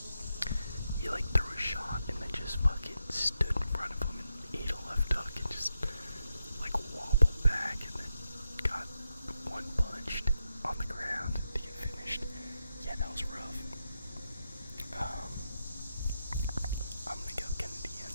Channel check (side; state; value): both; inverted; correlation -0.85